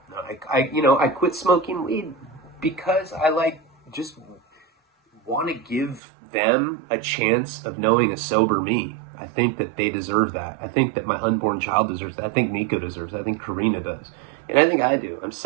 I quit smoking weed because I just want to give them a chance of knowing a sober me. I think that they deserve that. I think that my unborn child deserves that. I think Nico deserves that. I think Karina does. And I think I do.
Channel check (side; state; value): left; drops out; at 6.0 s